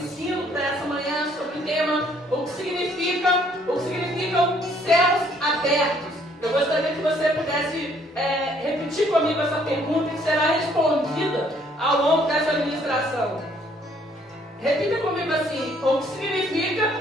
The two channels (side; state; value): both; normal; correlation 0.64